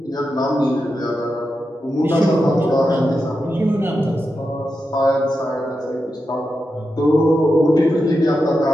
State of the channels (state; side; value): normal; both; correlation 0.88